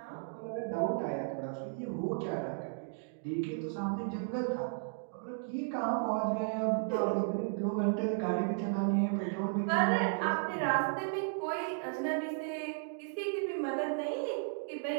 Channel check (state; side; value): silent; left; digital silence